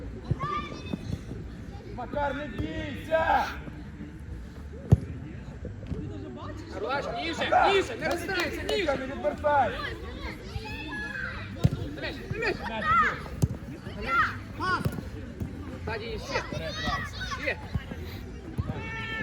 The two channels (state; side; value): identical; both; correlation 1.00